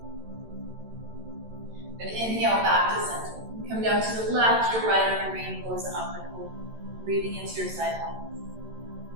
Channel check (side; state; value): left; late; 13 ms